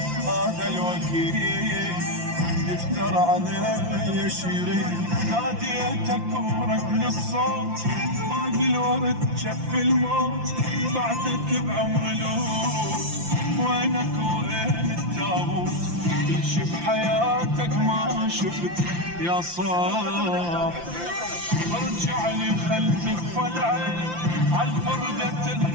هذا الوكيل يفتر علي شيري. ناديتك ورد الصوت، باقي الورد جف الموت، بعدك بعمر لوط، وينك وين التابوت؟ كل شي بحياتك ما شفت يا صاح، ارجع لي خل تكفى العين عالفردة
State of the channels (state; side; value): late; left; 5.8 ms